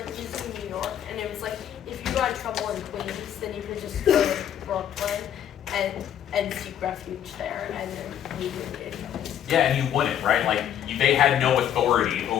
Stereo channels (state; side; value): quieter; right; 10.2 dB